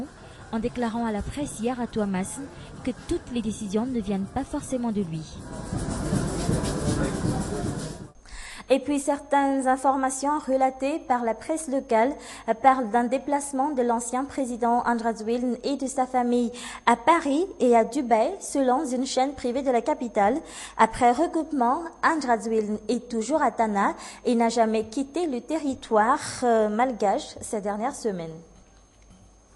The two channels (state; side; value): identical; both; correlation 1.00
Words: en déclarant à la presse hier à Touamas que toutes les décisions ne viennent pas forcément de lui. Et puis certaines informations relatées par la presse locale parlent d'un déplacement de l'ancien président Andradouilne et de sa famille à Paris et à Dubaï selon une chaîne privée de la capitale. Après recoupement, Andradouilne est toujours à Tana et n'a jamais quitté le territoire malgache ces dernières semaines.